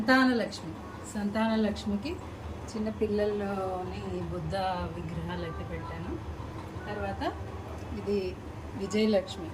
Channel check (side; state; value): both; identical; correlation 1.00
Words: సంతానలక్ష్మికి చిన్న పిల్లల్లోని బుద్ధ విగ్రహాలు అయితే పెట్టాను. తర్వాత ఇది విజయలక్ష్మి,